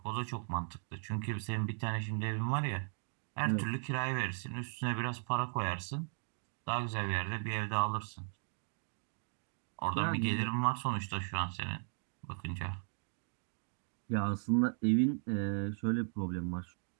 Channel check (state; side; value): silent; left; digital silence